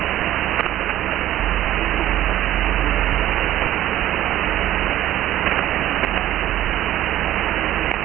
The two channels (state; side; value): quieter; left; 13.3 dB